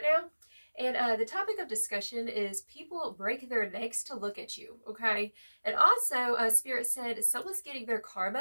now. And the topic of discussion is people break their necks to look at you, okay? And also, Spirit said someone's getting their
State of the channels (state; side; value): inverted; both; correlation -1.00